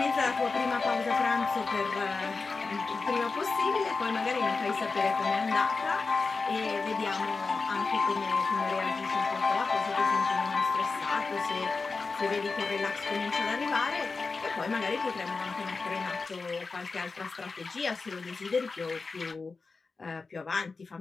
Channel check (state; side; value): quieter; right; 4.2 dB